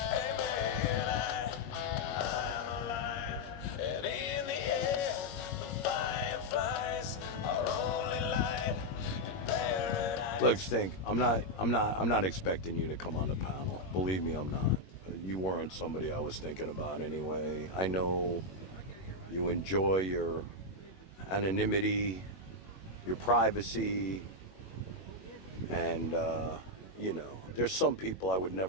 I'm alive, and in the air, the fireflies are only light in paradise. Look, Stink, I'm not expecting you to come on the panel. Believe me, I'm not. You weren't somebody I was thinking about anyway. I know you enjoy your anonymity, your privacy, and, you know, there's some people I would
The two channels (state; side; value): late; right; 21 ms